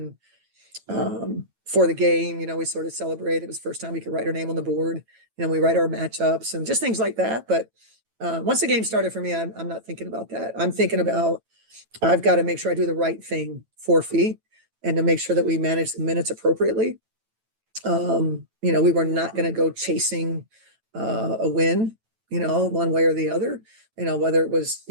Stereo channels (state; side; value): late; left; 9.0 ms